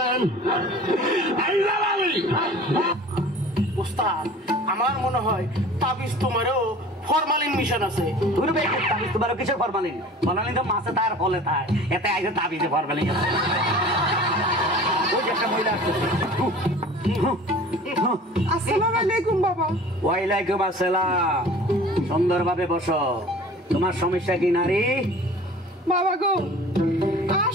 উস্তাদ, আমার মনে হয় তাবিজ তোমারও ফরমালিন মিশন আছে। তুই বেশ তাবিজ তোমারও কিসের ফরমালিন? ফরমালিন তো মাছে তার ফলে তাই, এতে আইসে তাবিজে ফরমালিন আছে। ওই যে একটা মহিলা আসছে। আসসালামু আলাইকুম বাবা। ওয়ালাইকুম আসসালাম। সুন্দরভাবে বসো। তোমার সমস্যা কি নারী? বাবা গো, আর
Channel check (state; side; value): normal; both; correlation 0.43